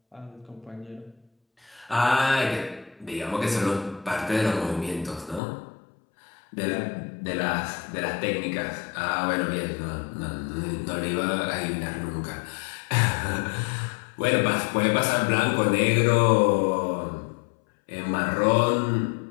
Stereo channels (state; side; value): drops out; right; at 5.4 s